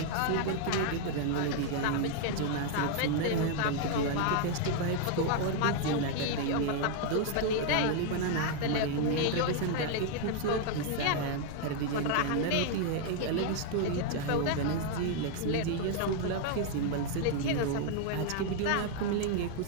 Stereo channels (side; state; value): both; different; correlation 0.00